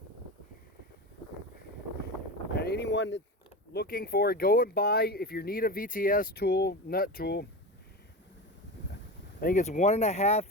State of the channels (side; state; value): both; normal; correlation 0.25